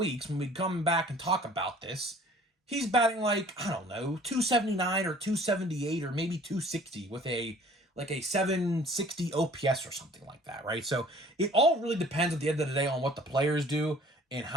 when we come back and talk about this, he's batting like, I don't know, 279 or 278 or maybe 260 with a 760 OPS or something like that, right? So it all really depends at the end of the day on what the players do and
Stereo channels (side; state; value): both; normal; correlation 0.52